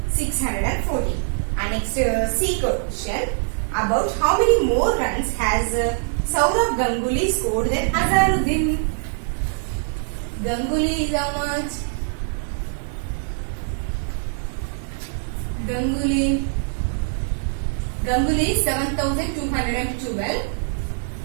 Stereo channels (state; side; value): silent; left; 63 dB below the other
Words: And next C question. About how many more runs has Saurav Ganguly scored than Hazaruddin? Ganguly is how much? Ganguly is 7,212